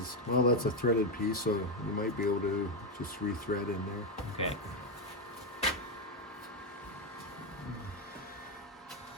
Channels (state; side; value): normal; both; correlation 0.06